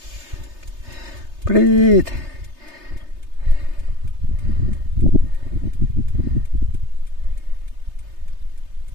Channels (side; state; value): left; late; 3.3 ms